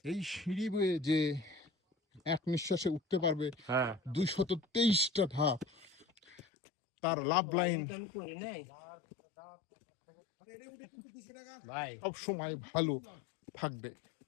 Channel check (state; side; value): drops out; right; at 6.4 s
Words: এই সিঁড়ি বেয়ে যে এক নিঃশ্বাসে উঠতে পারবে 223টা ধাপ, তার লাভ লাইন সব সময় ভালো থাকবে।